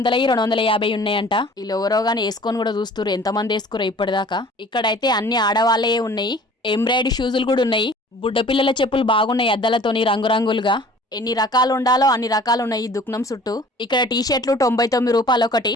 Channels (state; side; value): normal; both; correlation 0.49